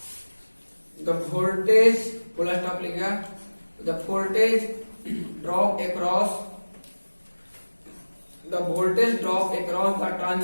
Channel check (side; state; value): both; inverted; correlation -1.00